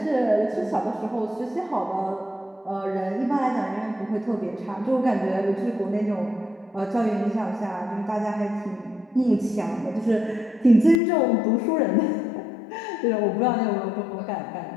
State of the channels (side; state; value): right; drops out; at 11.0 s